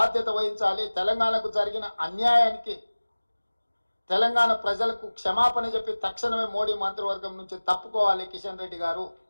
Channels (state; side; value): inverted; both; correlation -1.00